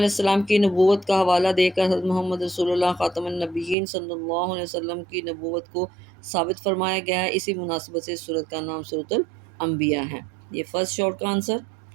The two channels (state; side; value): drops out; left; at 3.8 s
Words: السلام کی نبوت کا حوالہ دے کر حضرت محمد رسول اللہ خاتم النبیین صلی اللہ علیہ وسلم کی نبوت کو ثابت فرمایا گیا ہے، اسی مناسبت سے سورت کا نام سورۃ الانبیاء ہے۔ یہ فرسٹ شارٹ کا آنسر۔